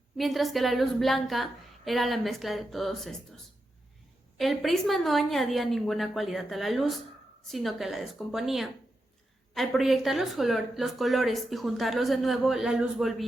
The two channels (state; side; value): normal; both; correlation 0.87